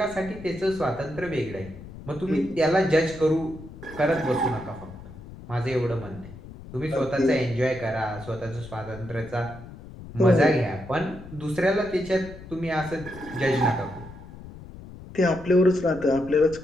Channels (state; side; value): noise; left; rumble, 15 dB below the sound